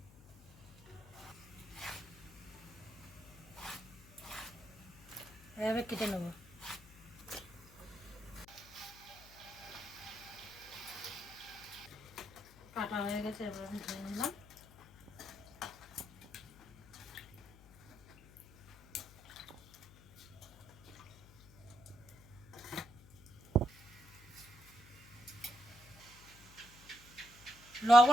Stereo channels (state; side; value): noise; left; hum, 22 dB below the sound